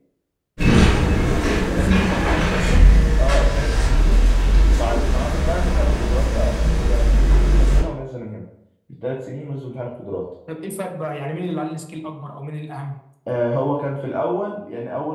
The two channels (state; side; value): identical; both; correlation 1.00